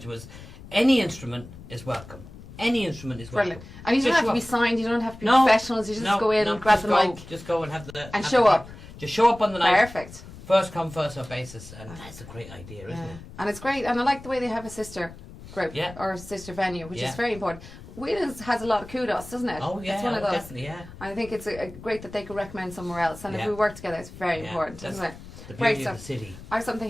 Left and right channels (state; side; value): noise; left; rumble, 16 dB below the sound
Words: was any instrument is welcome. Any instrument is welcome. Brilliant. And you don't have to be signed, you don't have to be professionals, you just go in and grab the mic. Just go and have and show up. Just show up on the night. Perfect. First come, first served basis. And that's a great idea, isn't it? And it's great. And I like the way they have a sister group or a sister venue, which is very important. Whelan's has a lot of kudos, doesn't it? Oh, yeah. It's one of those. Definitely, yeah. I think it's great that they could recommend somewhere else. And if we work together, it's very important, isn't it? The beauty of the city. I have